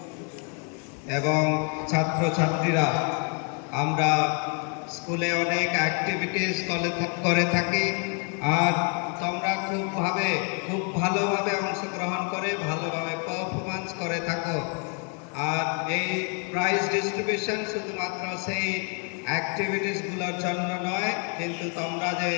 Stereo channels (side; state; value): right; quieter; 38.9 dB